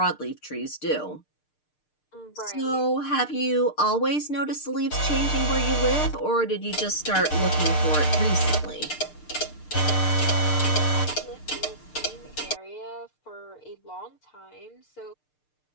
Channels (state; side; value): late; right; 6.6 ms